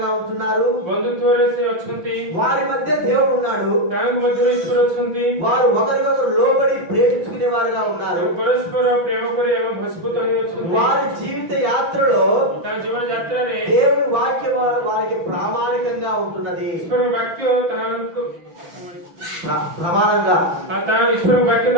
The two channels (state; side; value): late; left; 6.0 ms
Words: ఉంటున్నారు. ବନ୍ଧୁତ୍ୱରେ ସେ ଅଛନ୍ତି, వారి మధ్య దేవుడు ఉన్నాడు. ତାଙ୍କ ମଧ୍ୟରେ ଈଶ୍ୱର ଅଛନ୍ତି। వారు ఒకరికొకరు లోబడి ప్రేమించుకునే వారుగా ఉన్నారు. ଏବଂ ପରସ୍ପର ପ୍ରେମ କରି ଏବଂ ଭସ୍ମୀଭୂତ ହୋଇ ଅଛନ୍ତି। వారి జీవిత యాత్రలో ତାଙ୍କ ଜୀବନ ଯାତ୍ରାରେ దేవుని వాక్యం వారికి ప్రామాణికంగా ఉంటున్నది. ଈଶ୍ୱରଙ୍କ ବାକ୍ୟ ତାହାଙ୍କୁ ప్రమాణంగా ଈଶ୍ୱରଙ୍କ ବାକ୍ୟ